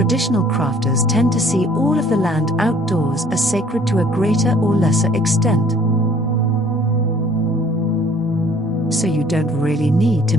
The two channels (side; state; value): both; normal; correlation 0.57